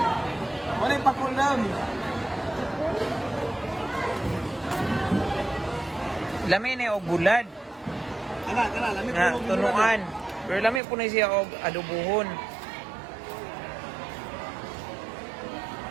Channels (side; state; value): left; drops out; at 10.8 s